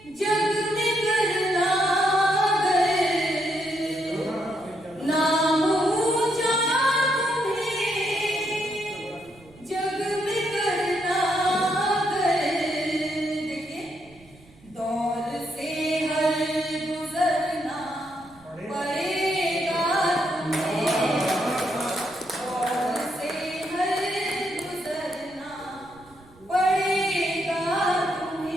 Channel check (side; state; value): right; noise; rumble, 26 dB below the sound